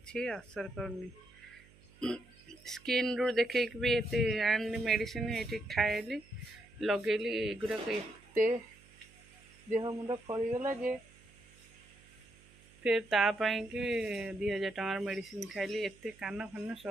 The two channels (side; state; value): right; noise; hum, 25 dB below the sound